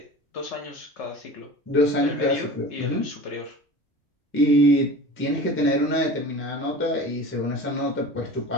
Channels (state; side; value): normal; both; correlation 0.37